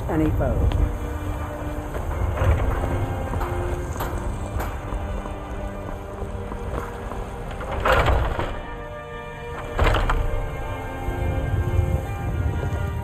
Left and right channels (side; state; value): both; identical; correlation 1.00